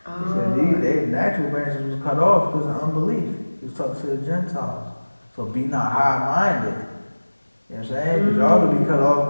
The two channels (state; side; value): inverted; both; correlation -1.00